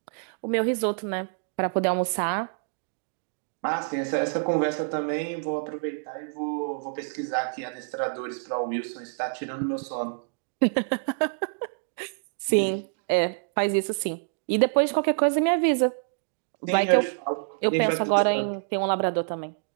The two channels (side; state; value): left; silent; digital silence